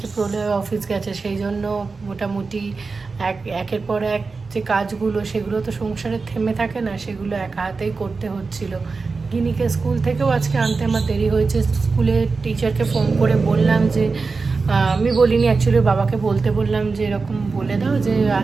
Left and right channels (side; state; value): left; quieter; 4.3 dB